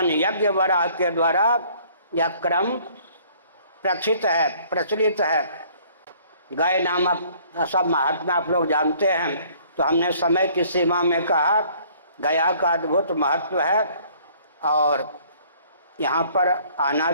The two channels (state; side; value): inverted; both; correlation -0.57